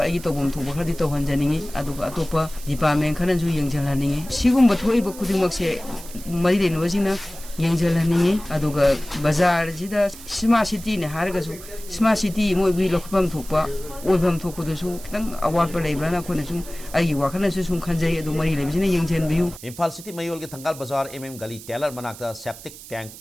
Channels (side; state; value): right; noise; hiss, 16 dB below the sound